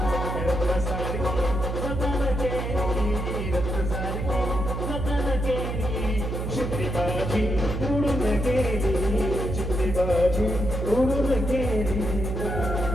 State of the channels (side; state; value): right; noise; hum, 3 dB below the sound